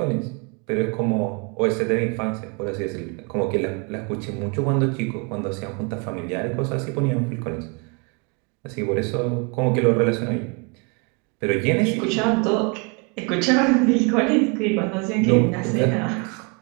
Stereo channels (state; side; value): quieter; left; 33.0 dB